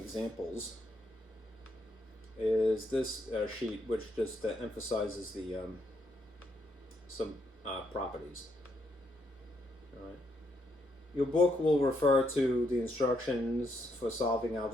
is this sheet, which just emphasizes the some properties. All right. Your book will refer to the instructions for solving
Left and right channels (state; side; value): normal; both; correlation 0.76